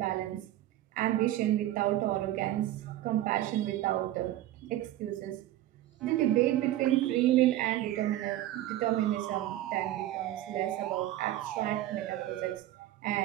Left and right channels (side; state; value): left; quieter; 14.1 dB